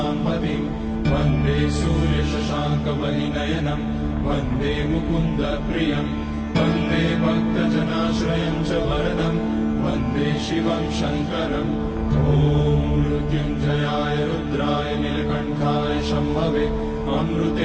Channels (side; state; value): both; identical; correlation 1.00